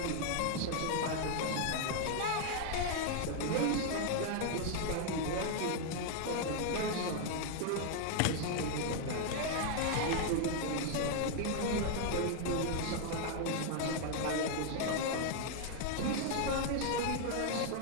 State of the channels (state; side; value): different; both; correlation 0.00